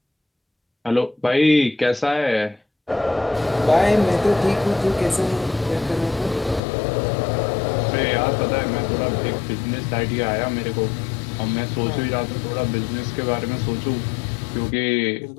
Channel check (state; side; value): drops out; right; at 6.6 s